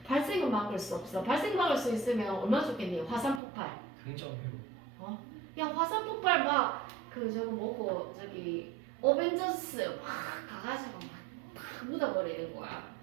발생은 막을 수 없어. 발생 막을 수 있으면 얼마나 좋겠니? 화산 폭발. 긍정 회복. 야, 화산 폭발 막 저거 뭐고 저기 어벤져스 막 가가지고 막 묻어버리는 거야.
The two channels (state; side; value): drops out; left; at 3.4 s